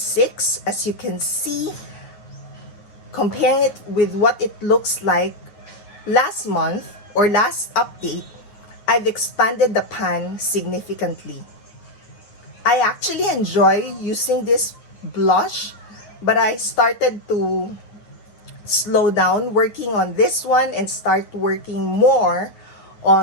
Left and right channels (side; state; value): right; late; 9.5 ms